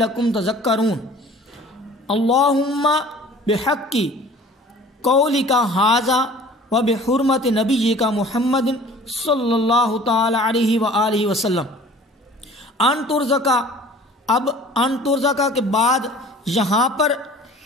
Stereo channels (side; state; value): both; normal; correlation 0.48